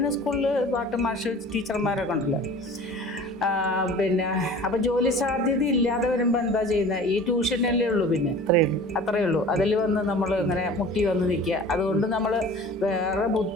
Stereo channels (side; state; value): both; normal; correlation 0.42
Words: സ്കൂളിൽ പാട്ട് മാഷ് ടീച്ചർമാരൊക്കെ ഉണ്ടല്ലോ. പിന്നെ അപ്പം ജോലി സാധ്യത ഇല്ലാതെ വരുമ്പോൾ എന്താ ചെയ്യുന്നത്? ഈ ട്യൂഷനല്ലേ ഉള്ളൂ. പിന്നെ അത്രയേ ഉള്ളൂ. അതിൽ വന്ന് നമ്മൾ ഇങ്ങനെ മുട്ടി വന്ന് നിൽക്കുക. അതുകൊണ്ട് നമ്മൾ വേറെ